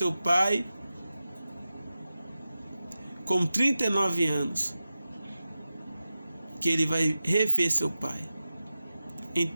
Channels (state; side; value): inverted; both; correlation -0.93